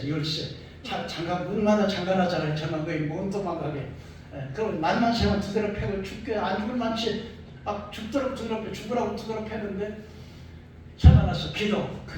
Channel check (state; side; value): identical; both; correlation 1.00